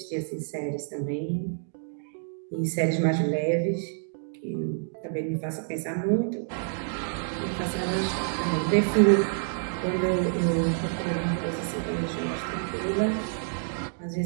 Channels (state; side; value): silent; left; digital silence